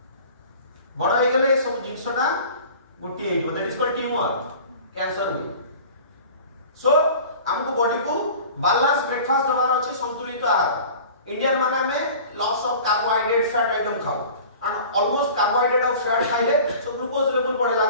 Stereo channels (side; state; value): both; inverted; correlation -0.42